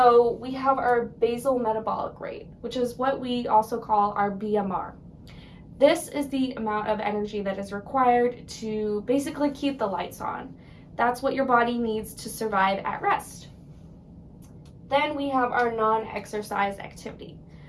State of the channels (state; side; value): identical; both; correlation 1.00